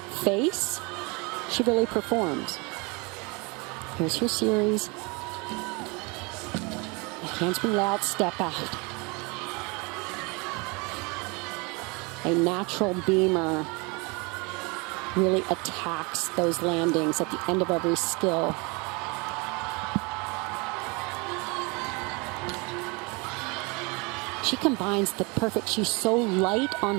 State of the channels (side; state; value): left; quieter; 28.9 dB